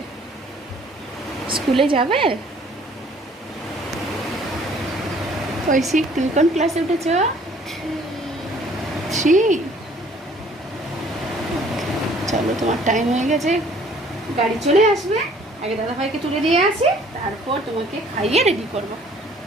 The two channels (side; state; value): both; normal; correlation 0.56